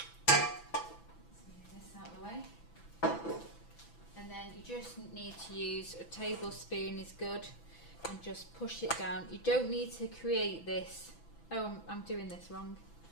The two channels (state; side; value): late; right; 6.0 ms